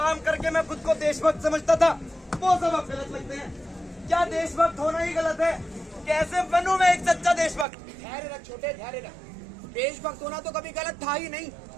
करके मैं खुद को देशभक्त समझता था, वो सब अब गलत लगते हैं। क्या देशभक्त होना ही गलत है? कैसे बनूं मैं एक सच्चा देशभक्त? धैर्य रख छोटे, धैर्य रख। देशभक्त होना तो कभी गलत था ही नहीं,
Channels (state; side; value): drops out; left; at 7.7 s